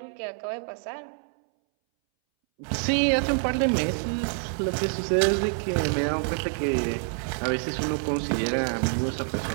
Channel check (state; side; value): silent; left; 60 dB below the other